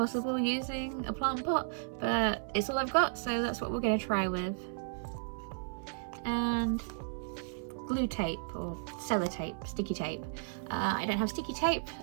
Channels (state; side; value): silent; left; 55 dB below the other